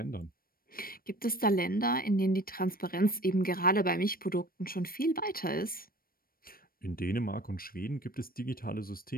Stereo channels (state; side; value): late; right; 0.43 ms